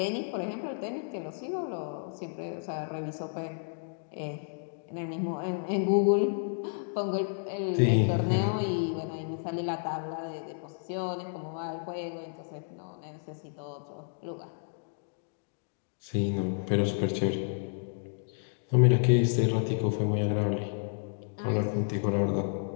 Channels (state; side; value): silent; right; digital silence